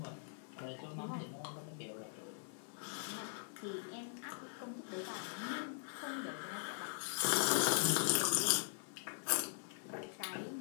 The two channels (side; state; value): right; silent; 50 dB below the other